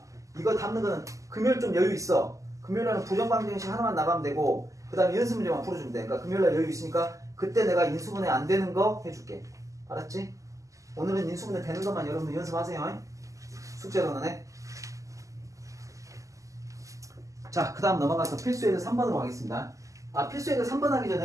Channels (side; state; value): left; late; 0.16 ms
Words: 이거 담는 거는 금요일 좀 여유 있어. 금요일에는 부정방정식 하나만 나가면 되고 그 다음에 연습 문제만 풀어주면 돼. 그러니까 금요일에 여유 있으니까 그때 내가 인수분해 안 되는 거 해줄게. 알았지? 오늘은 인수분해 되는 것만 여러분들 연습하세요. 숙제로는 해. 자, 그 다음 넘어가서 필수예제 3번으로 가겠습니다. 필수예제 3번 하기